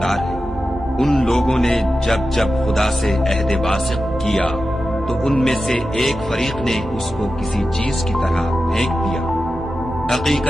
ہے۔ ان لوگوں نے جب جب خدا سے عہد واثق کیا تو ان میں سے ایک فریق نے اس کو کسی چیز کی طرح پھینک دیا۔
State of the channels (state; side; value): normal; both; correlation 0.92